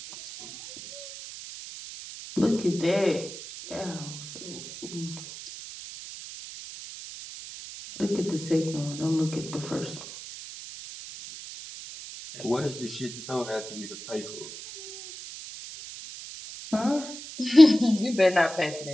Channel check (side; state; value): right; noise; hiss, 12 dB below the sound